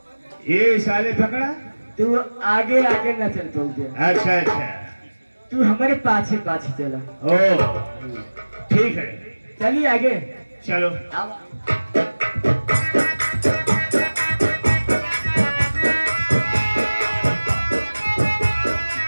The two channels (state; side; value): inverted; both; correlation -1.00